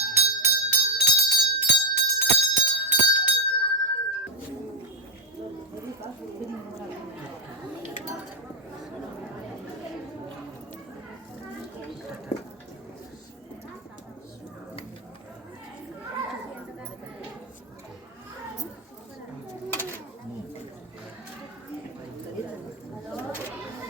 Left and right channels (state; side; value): normal; both; correlation 0.03